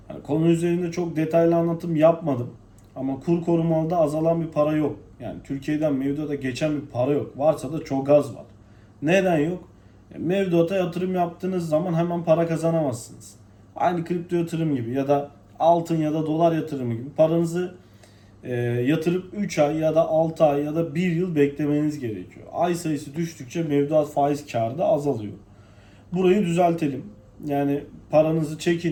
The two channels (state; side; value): identical; both; correlation 1.00